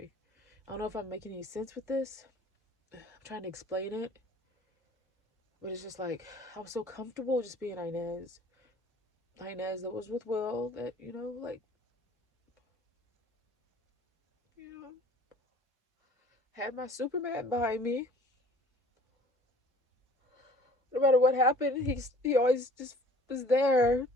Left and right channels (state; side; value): normal; both; correlation 0.51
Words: I don't know if I'm making any sense with this. I'm trying to explain it. But it's just like, I was so comfortable just being Inez. Inez that was with Will, that, like, you know, had my Superman behind me. No matter what happened, he always just was there